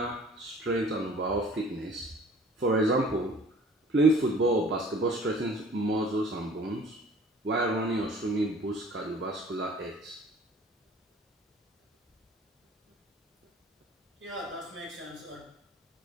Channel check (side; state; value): both; normal; correlation 0.50